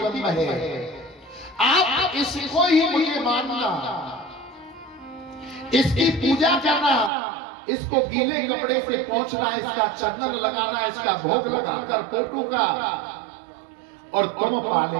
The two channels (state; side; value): drops out; left; at 7.1 s